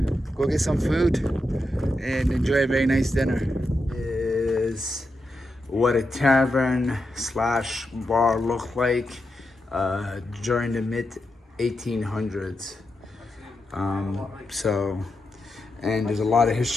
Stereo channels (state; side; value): normal; both; correlation 0.87